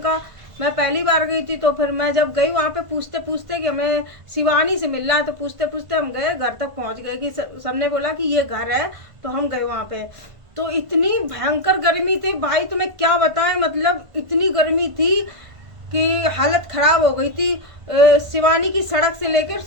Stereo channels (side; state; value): left; late; 1.5 ms